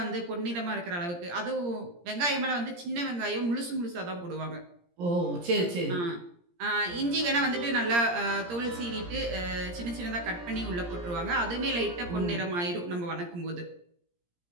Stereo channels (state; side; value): late; left; 17 ms